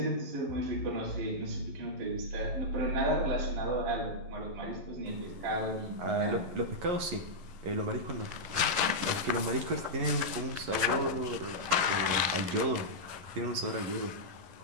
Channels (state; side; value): late; left; 11 ms